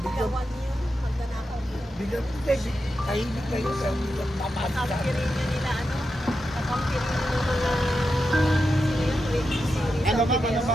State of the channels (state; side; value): normal; both; correlation 0.88